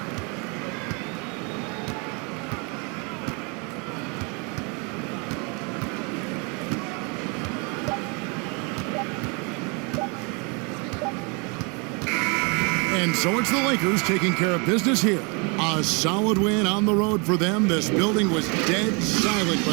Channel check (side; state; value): left; quieter; 32.4 dB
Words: And so it's the Lakers taking care of business here. A solid win on the road for them. This building was dead silent